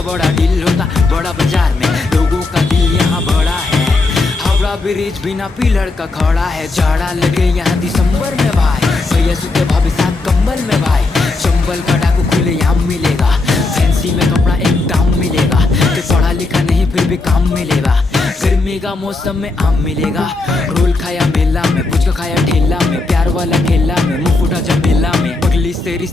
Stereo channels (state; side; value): quieter; right; 3.4 dB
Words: बड़ा डील होता बड़ा बाजार में। लोगों का दिल यहाँ बड़ा है, हावड़ा ब्रिज बिना पिलर का खड़ा है। जाड़ा लगे यहाँ दिसंबर में भाई, भैया सुते भाभी साथ कंबल में भाई। चंबल का डाकू खुले यहाँ मिलेगा, फैंसी में कपड़ा एक दाम मिलेगा। कि पढ़ा लिखा नहीं फिर भी काम मिलेगा, गर्मी का मौसम में आम मिलेगा। रोल खाया मेला में, पुचका खाया ठेला में, प्यार वाला खेला में, मुंह फूटा जब मेला में। पगली से